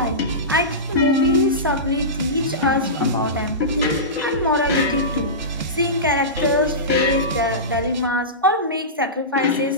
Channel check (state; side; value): normal; both; correlation -0.19